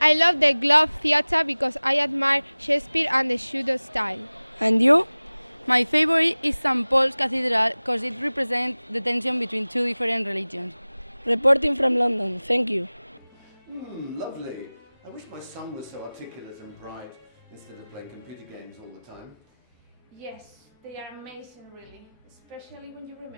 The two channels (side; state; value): both; inverted; correlation -0.99